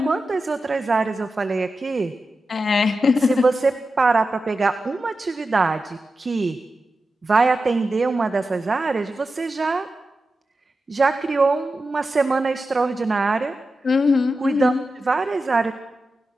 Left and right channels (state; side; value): normal; both; correlation 0.91